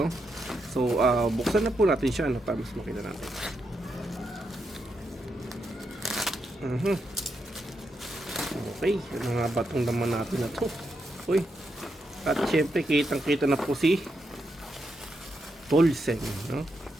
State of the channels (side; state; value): both; normal; correlation 0.83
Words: So, buksan na po natin siya, no? Para mas makita natin. Okay, ano nga ba itong laman natin na to? Uy, at syempre, kitang-kita na po si Toolsen, no?